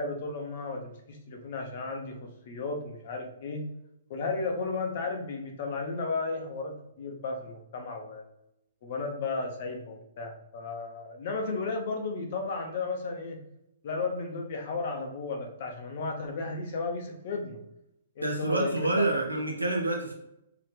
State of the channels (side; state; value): both; inverted; correlation -0.55